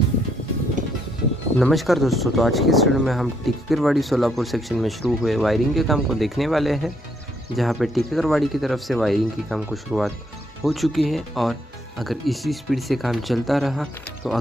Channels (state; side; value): normal; both; correlation 0.72